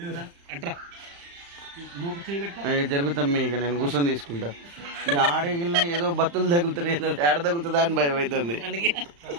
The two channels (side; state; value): left; late; 35 ms